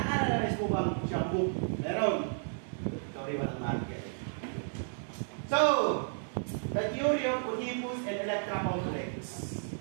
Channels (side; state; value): left; silent; 56 dB below the other